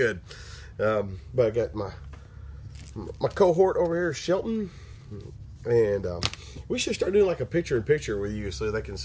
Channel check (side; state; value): both; identical; correlation 1.00